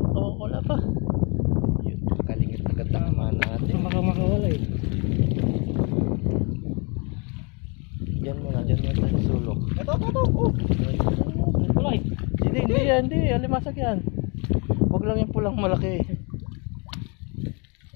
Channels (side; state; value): right; quieter; 32.2 dB